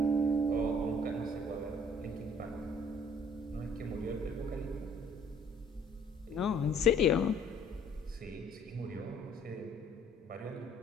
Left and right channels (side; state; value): both; normal; correlation 0.59